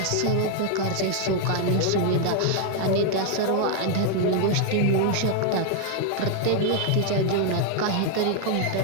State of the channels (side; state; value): both; different; correlation 0.00